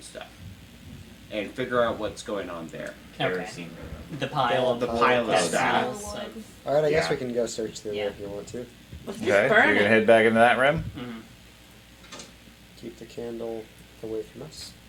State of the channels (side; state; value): both; identical; correlation 1.00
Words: stuff, and figure out what's going on there. Okay. Kerosene room. The pile The of pile of that stuff. smells of- All right, I guess Yeah. we can go search through Yeah. there if you want to. let's just Okay, so burn you're gonna it. head back into that room. Mhm. Keep the candle away from us.